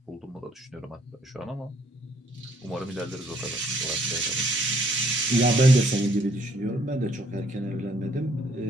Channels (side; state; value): both; normal; correlation 0.65